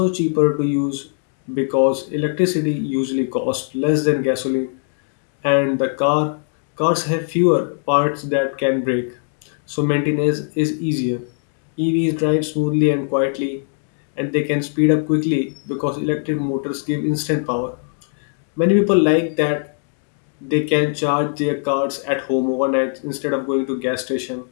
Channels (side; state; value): right; silent; 61 dB below the other